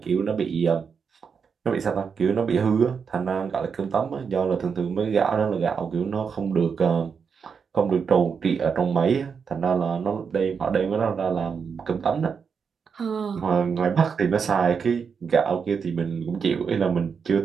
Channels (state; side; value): quieter; left; 6.2 dB